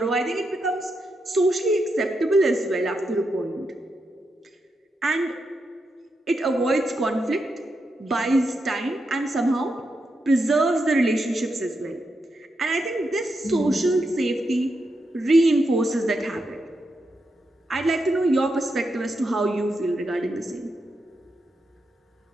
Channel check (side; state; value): both; normal; correlation 0.84